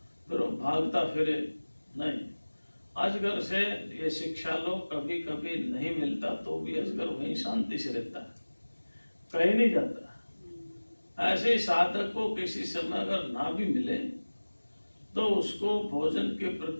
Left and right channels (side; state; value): both; inverted; correlation -1.00